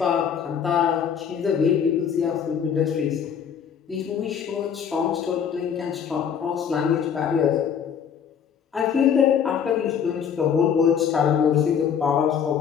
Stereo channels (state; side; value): quieter; right; 7.7 dB